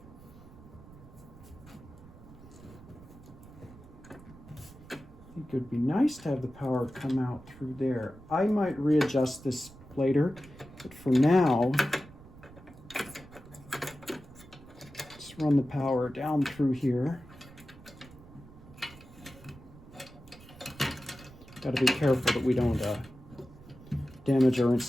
I think it would be nice to have the power come out through there. I might readjust this later, but for now, let's run the power down through here. Got to be careful that we don't damage our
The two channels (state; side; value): noise; right; rumble, 20 dB below the sound